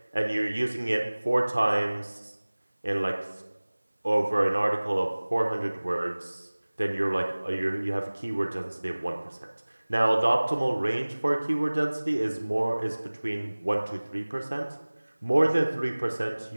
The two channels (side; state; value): both; inverted; correlation -1.00